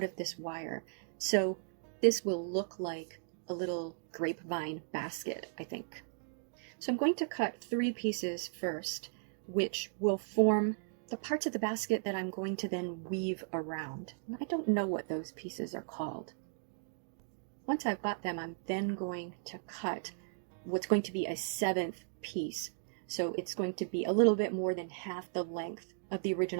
of this wire. So this will look like a little grapevine basket, I think. So I'm going to cut 3 pieces first, which will form the parts of the basket that I'm going to then weave around. And I don't know what those pieces are called. Once I've got them, I'm then going to cut what's going to be a 7th piece. So it's going to be a little bit more than half the length of the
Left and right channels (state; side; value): silent; left; digital silence